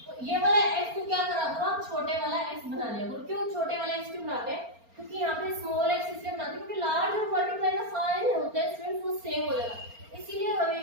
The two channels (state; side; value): late; left; 4.3 ms